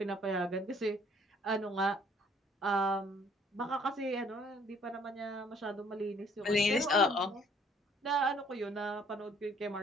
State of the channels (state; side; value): normal; both; correlation 0.60